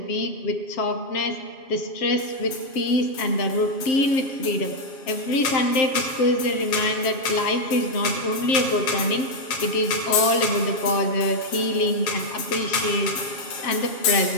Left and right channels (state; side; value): late; right; 7.3 ms